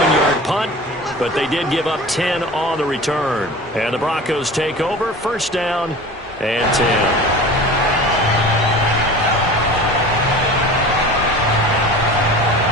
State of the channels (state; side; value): normal; both; correlation 0.37